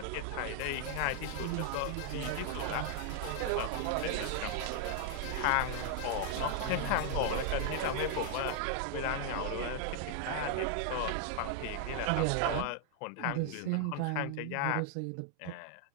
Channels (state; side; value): different; both; correlation 0.00